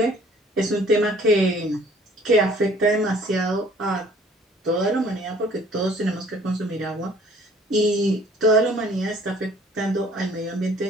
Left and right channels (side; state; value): both; normal; correlation 0.55